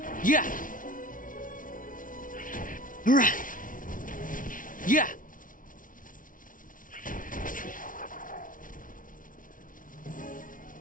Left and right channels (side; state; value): right; late; 0.39 ms